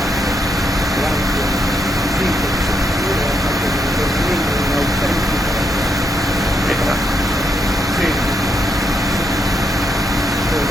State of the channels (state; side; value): normal; both; correlation 0.79